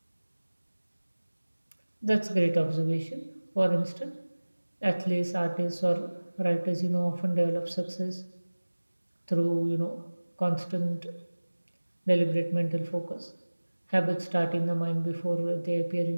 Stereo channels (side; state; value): both; inverted; correlation -1.00